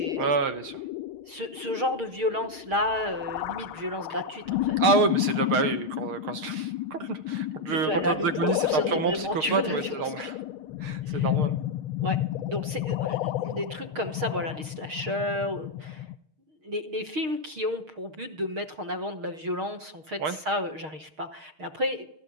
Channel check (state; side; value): late; left; 6.4 ms